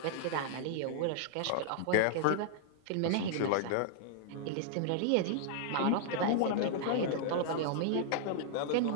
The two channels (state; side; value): different; both; correlation -0.01